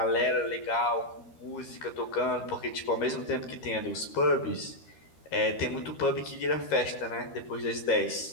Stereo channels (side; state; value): right; late; 13 ms